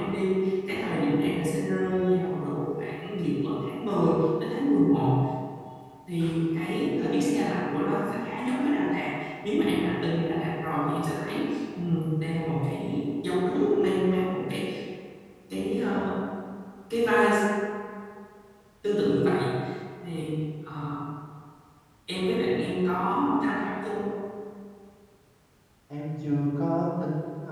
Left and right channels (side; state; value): both; identical; correlation 1.00